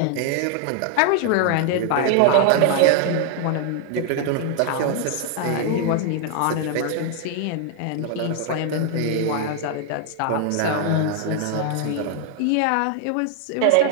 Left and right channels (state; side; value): different; both; correlation 0.00